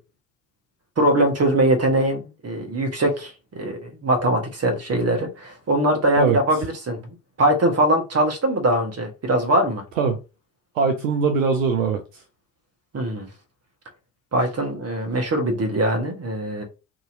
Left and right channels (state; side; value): normal; both; correlation -0.11